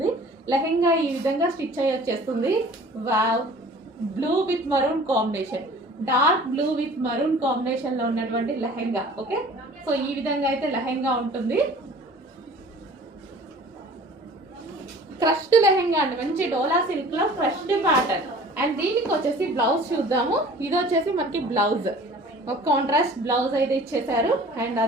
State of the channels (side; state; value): both; normal; correlation 0.47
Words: లెహెంగా ఈ విధంగా స్టిచ్ అయ్యి వచ్చేస్తుంది. Wow, blue with maroon combination, dark blue with maroon combination లో ఉన్నటువంటి లెహెంగా. ఓకే, సో ఈ విధంగా అయితే లెహెంగా ఉంటుంది. క్రష్డ్ లెహెంగా అండి, మంచి డోలా సిల్క్ లో క్రష్డ్ ప్యాటర్న్. అండ్ దీనికి వచ్చేసి బ్లౌజ్ చూద్దాము. ఇది వచ్చేసి మనకి బ్లౌజ్, ఒక కాంట్రాస్ట్ బ్లౌజ్ అయితే ఇచ్చేసారు. అండ్